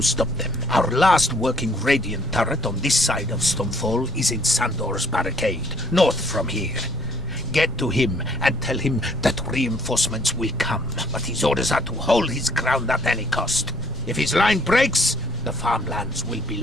stop them. Our last working Radiant turret on this side of Stonefall is in Sandor's barricade, north from here. Get to him and tell him that reinforcements will come, but his orders are to hold his ground at any cost. If his line breaks, the farmlands will be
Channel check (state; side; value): normal; both; correlation 0.63